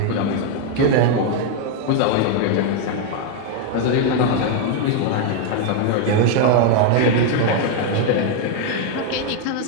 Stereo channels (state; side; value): different; both; correlation 0.00